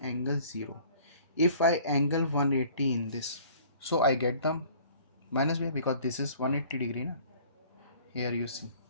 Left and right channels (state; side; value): inverted; both; correlation -0.52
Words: angle 0. If I angle 180 in this, so I get the minus VR because this is 180 degree na? Here you see.